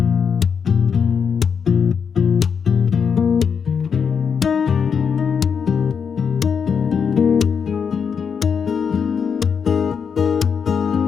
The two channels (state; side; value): quieter; right; 6.6 dB